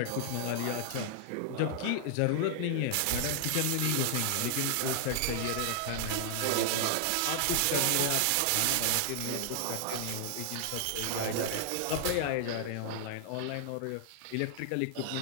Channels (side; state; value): both; different; correlation -0.01